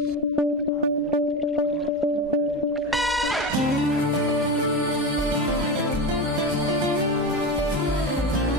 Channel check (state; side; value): normal; both; correlation 0.22